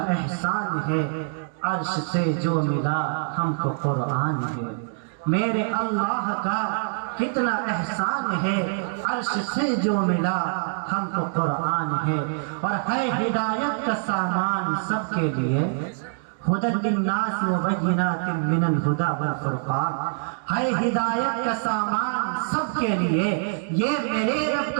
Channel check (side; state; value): left; silent; digital silence